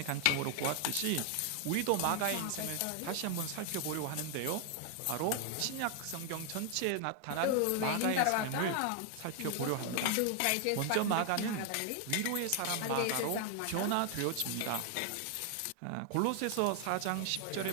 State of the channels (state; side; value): different; both; correlation 0.00